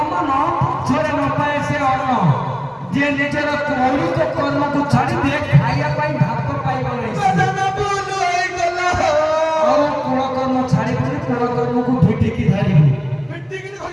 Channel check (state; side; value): identical; both; correlation 1.00